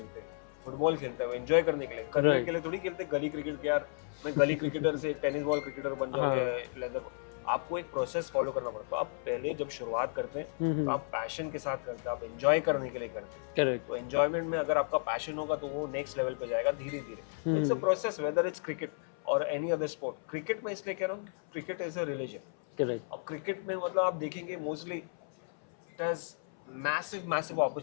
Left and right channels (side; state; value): right; silent; 55 dB below the other